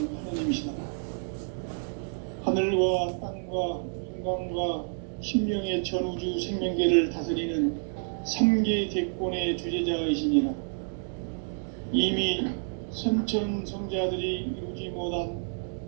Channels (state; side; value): silent; left; 59 dB below the other